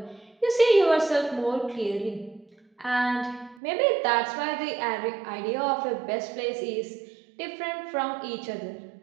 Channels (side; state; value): left; drops out; at 3.6 s